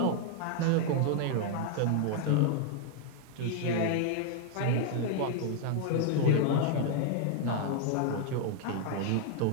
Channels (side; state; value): both; different; correlation 0.00